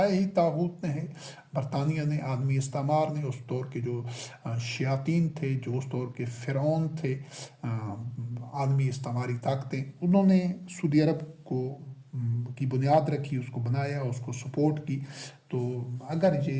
ہی طاغوت نے ہے، برطانیہ نے، عالمی استعمار نے، اس دور کے جو شیاطین تھے، جو اس دور کے فرعون تھے، عالمی استعماری طاقتیں، انہوں نے سعودی عرب کی بنیاد رکھی، اس کو بنایا، اس کو سپورٹ کی۔ تو اگر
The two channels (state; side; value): identical; both; correlation 1.00